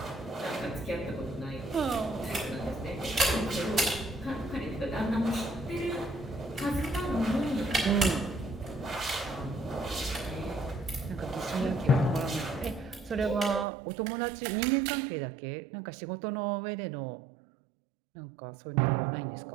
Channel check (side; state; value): left; drops out; at 13.7 s